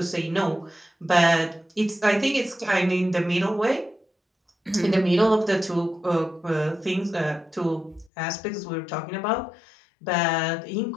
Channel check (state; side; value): drops out; right; at 8.1 s